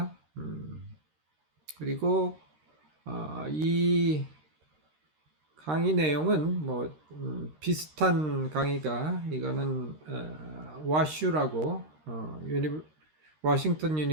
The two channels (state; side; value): late; left; 13 ms